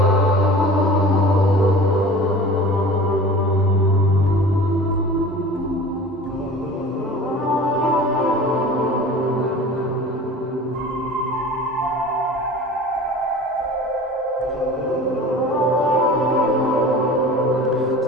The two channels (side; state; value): both; normal; correlation 0.40